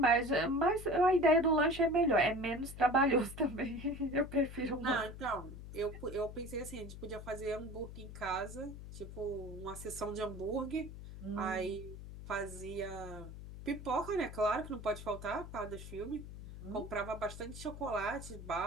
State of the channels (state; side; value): noise; left; hum, 12 dB below the sound